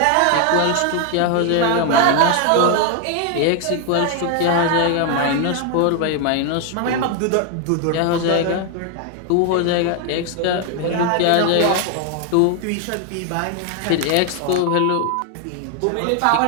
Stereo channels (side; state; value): both; different; correlation 0.00